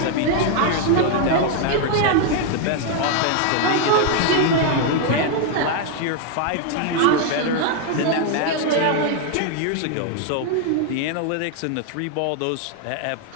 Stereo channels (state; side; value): different; both; correlation 0.00